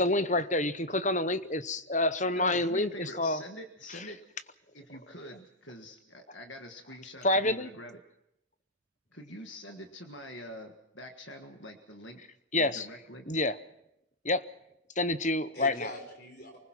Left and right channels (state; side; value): normal; both; correlation -0.04